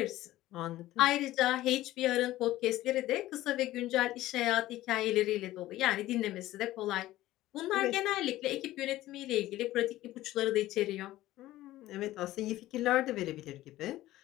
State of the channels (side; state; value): right; quieter; 15.7 dB